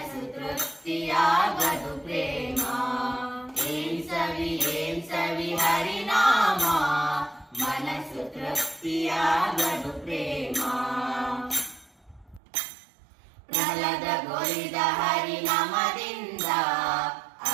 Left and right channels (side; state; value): left; drops out; at 12.4 s